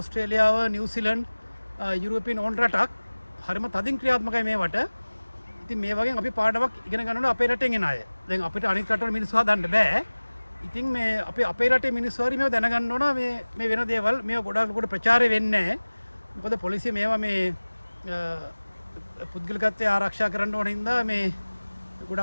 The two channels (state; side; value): inverted; both; correlation -1.00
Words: නිව්සීලන්ඩ් යුරෝපියන් ඕන රටක් හරිම තදින් ක්‍රියාත්මකයි මේවට ඉතින් මේ වගේ අපි පාඩමක් ඉගෙන ගන්න ඕනේ අපේ රටෙන් එන අය දැන් අපිට අනිත් රටවල මිනිස්සු හදන්න බෑ ඉතින් මේ අපේ රටේ මිනිස්සු හරි මේව දැනගන්න ඕන මේ වෙන දේවල් මේව ගොඩක් ලොකුට ප්‍රචාරය වෙන්නේ නැහැ මොකද පොලිසිය මේවා මේ පුද්ගලිකත්වය ආරක්ෂා කරන්න ඕන හින්දා මේ